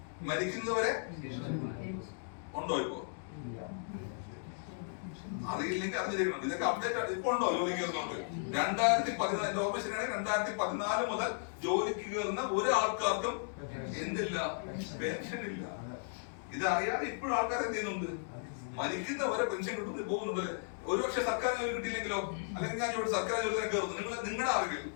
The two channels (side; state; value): right; silent; digital silence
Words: ഉണ്ടോ? ഇപ്പോ അറിയില്ലെങ്കിൽ അത് ചെയ്യണം. ഇതൊക്കെ അപ്ഡേറ്റ് ഇപ്പൊ ഉണ്ടോ ജോലിക്ക് കയറുന്നുണ്ട്? 2014 ഓർമ്മ ശരിയാണ്, 2014 മുതൽ ജോലിക്ക് കയറുന്ന ഒരു ആൾക്കാർക്കും എന്തില്ല, പെൻഷൻ ഇല്ല. ഇത് അറിയാതെ ഇപ്പോഴും ആൾക്കാർ എന്ത് ചെയ്യുന്നുണ്ട്, മരിക്കുന്നവരെ പെൻഷൻ കിട്ടുന്നത് പോകുന്നുണ്ടല്ലേ. ഒരുപക്ഷെ സർക്കാർ ജോലി കിട്ടിയില്ലെങ്കിലോ, അല്ലെങ്കിൽ ഞാൻ ഇവിടെ സർക്കാർ ജോലി തന്നെ കയറുന്നു, നിങ്ങളുടെ അറിവിൽ